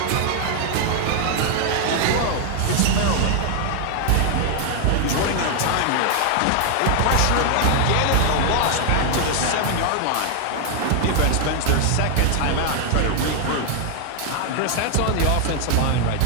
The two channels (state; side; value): different; both; correlation 0.00